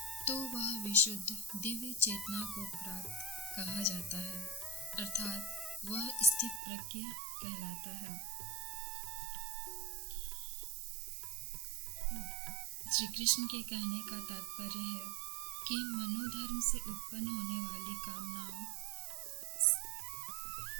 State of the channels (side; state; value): left; drops out; at 6.6 s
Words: तो वह विशुद्ध दिव्य चेतना को प्राप्त कहा जाता है, अर्थात वह स्थित प्रज्ञ कहलाता है। श्री कृष्ण के कहने का तात्पर्य है कि मनोधर्म से उत्पन्न होने वाली कामनाओं